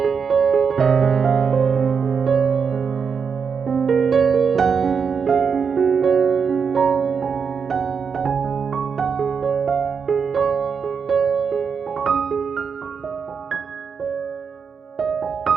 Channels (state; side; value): quieter; left; 6.2 dB